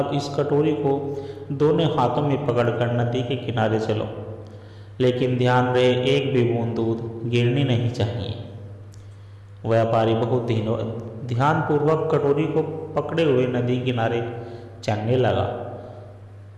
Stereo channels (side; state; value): both; identical; correlation 1.00